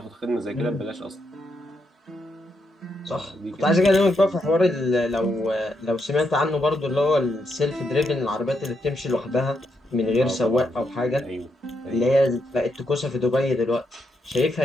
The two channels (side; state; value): both; normal; correlation 0.80